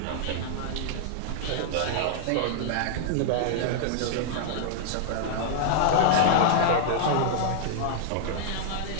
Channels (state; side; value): different; both; correlation -0.01